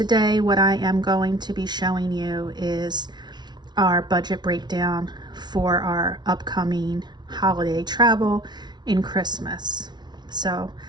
what I am going to be showing you is our budget breakdown for our upcoming holiday travel in Christmas. So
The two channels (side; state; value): left; late; 0.20 ms